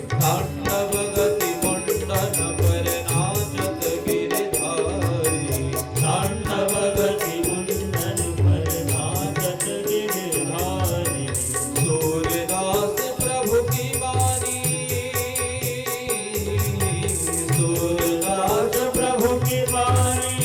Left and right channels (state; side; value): identical; both; correlation 1.00